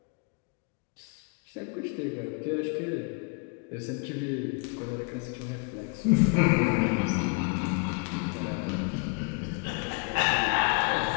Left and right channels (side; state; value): right; quieter; 35.4 dB